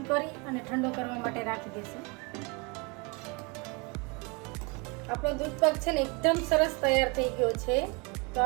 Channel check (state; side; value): quieter; left; 30.1 dB